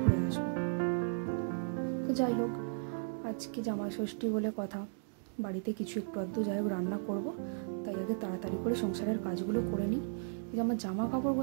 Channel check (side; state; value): left; silent; digital silence